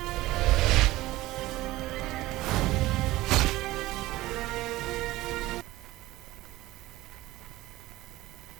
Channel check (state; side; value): quieter; left; 17.5 dB